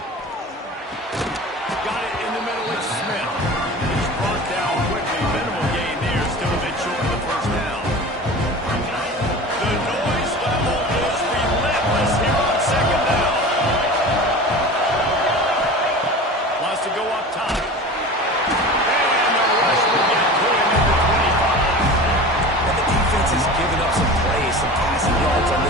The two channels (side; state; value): both; normal; correlation 0.35